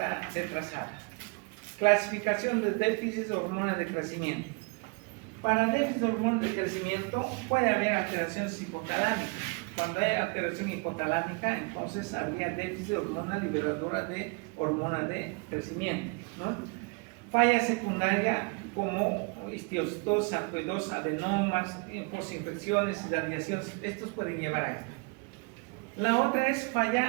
retrasada. Clasificación de déficit de hormonas de crecimiento. Para déficit de hormonas de crecimiento puede haber alteraciones hipotalámicas. Cuando hay alteración hipotalámica, entonces habría déficit de hormona liberadora de hormona de crecimiento, ¿no? Falla secundaria como histiocytosis, sarcoidosis, adenomas, postinfecciones, radiaciones, estos pueden llevar a esto. La otra es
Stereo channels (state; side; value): quieter; left; 31.0 dB